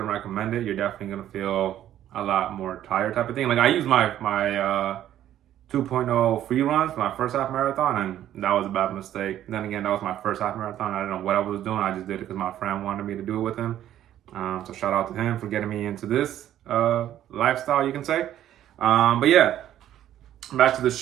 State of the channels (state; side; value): quieter; left; 11.8 dB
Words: recommend it. You're definitely gonna feel a lot more tired type of thing. Like I used my 2.0 free runs for my first half marathon, and that was a bad mistake. Then again, that was my first half marathon. I didn't know what I was doing. I just did it because my friend wanted me to do it with him. So shout out to him for getting me into this lifestyle, you can say. But yeah, back to the